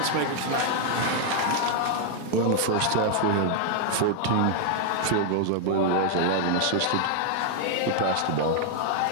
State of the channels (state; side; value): different; both; correlation 0.00